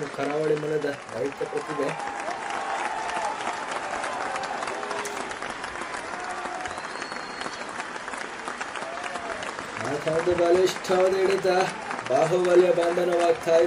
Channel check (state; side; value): identical; both; correlation 1.00